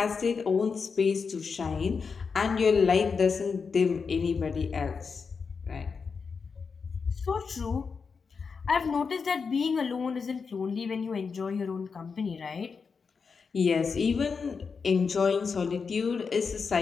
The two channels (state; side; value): quieter; right; 5.4 dB